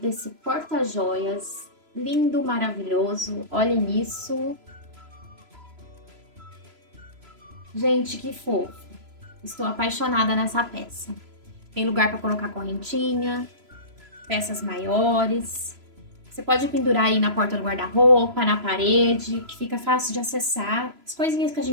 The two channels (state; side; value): late; left; 3.0 ms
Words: porta-joias lindo, maravilhoso. Olhem isso. Gente, que fofo. Estou apaixonada nessa peça. Tem lugar para colocar correntinha, peças maiores. Você pode pendurar aí na porta do guarda-roupa, na parede, que fica fácil de acessar. As coisinhas que a